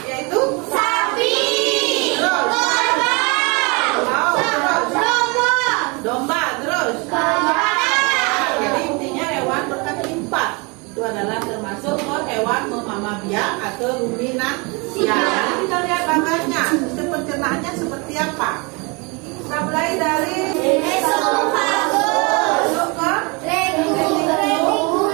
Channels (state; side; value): quieter; left; 29.7 dB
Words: yaitu sapi, domba, terus jadi intinya hewan berkaki 4 itu adalah termasuk hewan memamah biak atau ruminansia. Jadi kita lihat bagannya, sistem pencernaannya seperti apa. Kita mulai dari esofagus masuk ke